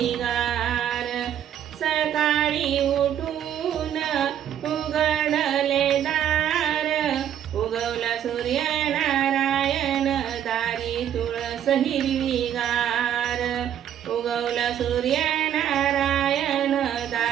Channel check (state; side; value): quieter; left; 10.0 dB